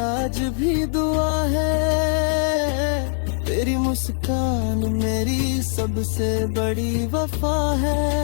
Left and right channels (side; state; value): right; silent; 64 dB below the other